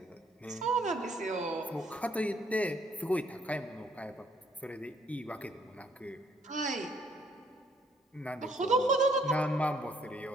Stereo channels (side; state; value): both; normal; correlation 0.66